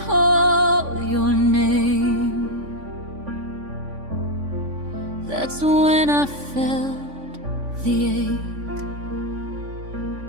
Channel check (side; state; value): left; late; 3.5 ms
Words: call your name, that's when I felt the ache.